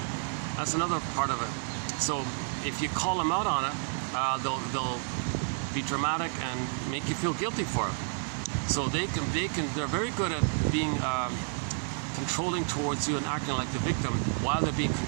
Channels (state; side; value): silent; left; 58 dB below the other